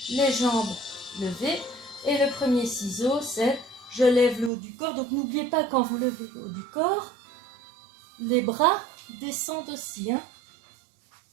les jambes levées et le premier ciseau c'est je lève le haut du corps. Donc n'oubliez pas quand vous levez le haut du corps, les bras descendent aussi.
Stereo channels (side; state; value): left; drops out; at 4.5 s